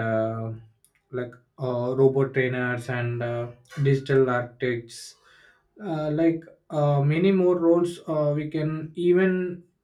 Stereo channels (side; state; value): both; identical; correlation 1.00